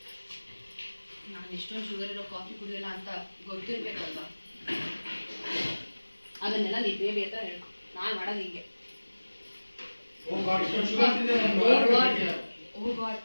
ನಾನು ಇಷ್ಟೊಂದು ಶುಗರ್ ಇರೋ ಕಾಫಿ ಕುಡಿಯಲ್ಲ ಅಂತ ಗೊತ್ತಿರ್ಬೇಕಲ್ವಾ? ಅದನ್ನೆಲ್ಲ ನೀ ಬೇಬಿ ಹತ್ರ ಹೇಳು. ನಾನು ಮಾಡೋದು ಹೀಗೆ. ಓ ಗಾಡ್,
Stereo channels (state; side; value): inverted; both; correlation -1.00